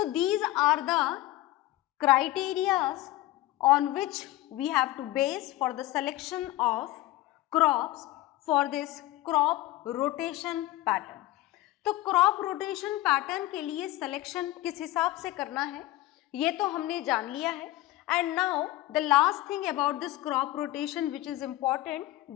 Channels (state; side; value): quieter; right; 16.7 dB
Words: these are the criterias on which we have to base for the selection of crops for this crop rotation pattern। तो crop rotation pattern के लिए selection किस हिसाब से करना है ये तो हमने जान लिया है। And now the last thing about this crop rotation which is important,